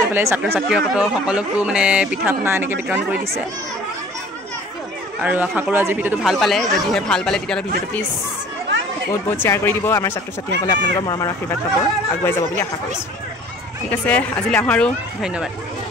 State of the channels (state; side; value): normal; both; correlation 0.49